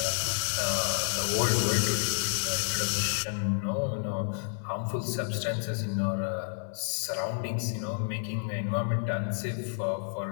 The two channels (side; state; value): right; silent; digital silence